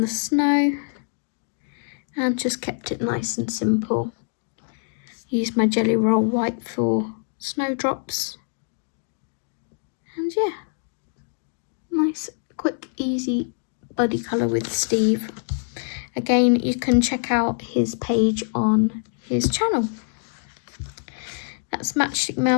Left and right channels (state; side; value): silent; right; digital silence